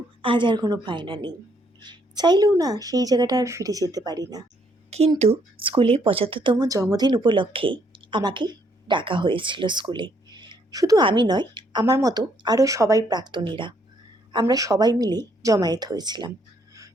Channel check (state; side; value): normal; both; correlation 0.70